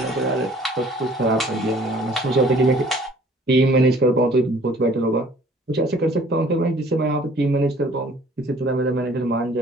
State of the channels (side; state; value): both; normal; correlation 0.55